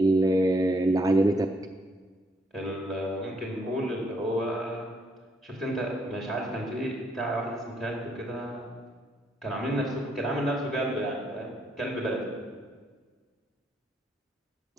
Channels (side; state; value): both; normal; correlation 0.72